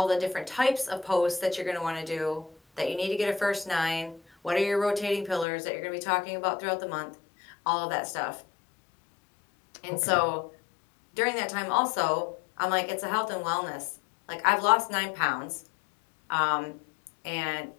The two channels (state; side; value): drops out; right; at 5.5 s